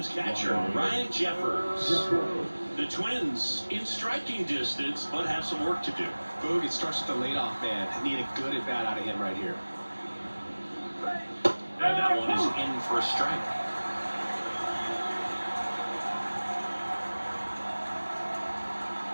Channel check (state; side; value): inverted; both; correlation -1.00